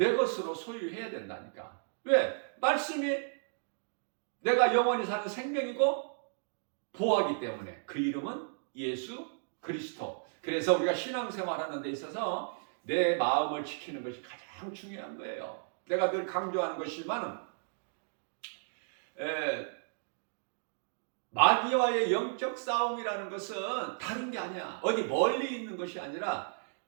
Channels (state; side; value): silent; left; digital silence